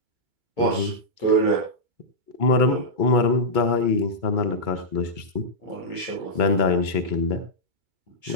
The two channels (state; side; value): late; left; 2.2 ms